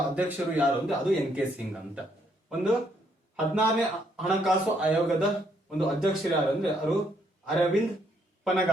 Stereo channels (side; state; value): both; normal; correlation 0.71